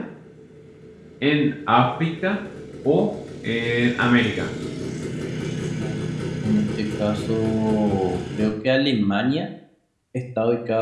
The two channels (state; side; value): identical; both; correlation 1.00